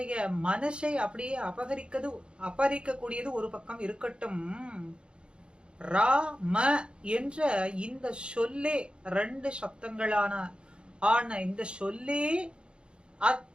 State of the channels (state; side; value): late; left; 0.054 ms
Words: மனசை அப்படியே அபகரிக்கக்கூடியது ஒரு பக்கம் இருக்கட்டும், ராம என்ற இந்த சொல்லே, ரெண்டு சப்தங்களான இந்த சொல்லே